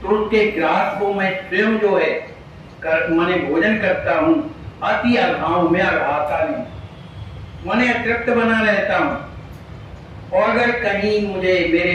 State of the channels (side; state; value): both; identical; correlation 1.00